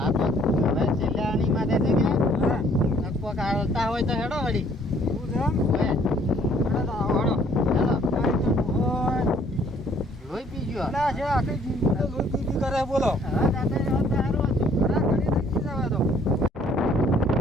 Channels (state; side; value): normal; both; correlation 0.61